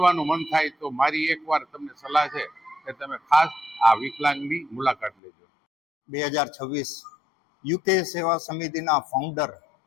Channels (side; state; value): right; drops out; at 5.1 s